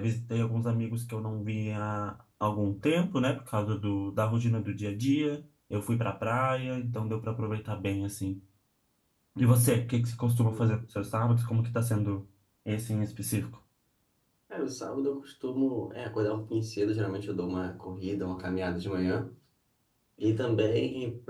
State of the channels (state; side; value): identical; both; correlation 1.00